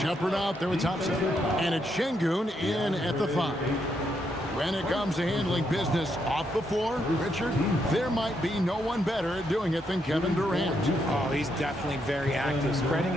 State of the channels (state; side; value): normal; both; correlation 0.78